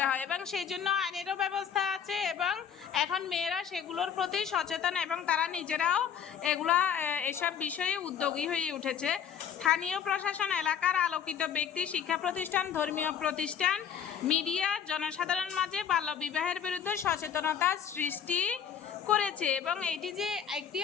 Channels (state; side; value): quieter; right; 8.2 dB